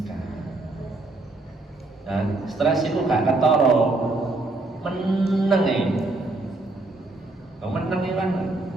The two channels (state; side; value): quieter; left; 3.0 dB